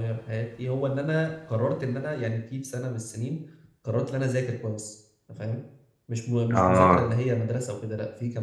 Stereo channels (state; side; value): identical; both; correlation 1.00